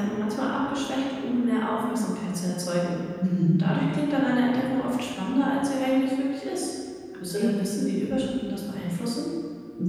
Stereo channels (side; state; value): both; identical; correlation 1.00